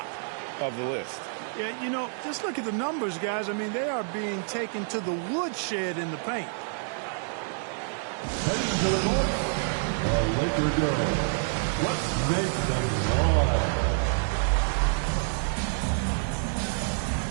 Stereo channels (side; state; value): left; silent; digital silence